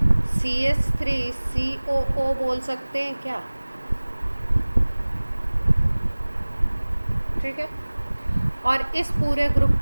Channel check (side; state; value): both; inverted; correlation -1.00